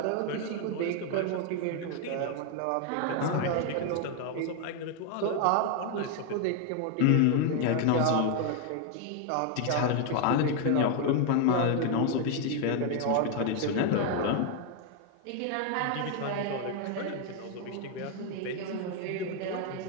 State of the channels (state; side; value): different; both; correlation 0.01